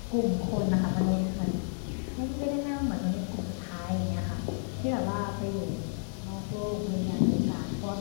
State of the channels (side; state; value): right; silent; 56 dB below the other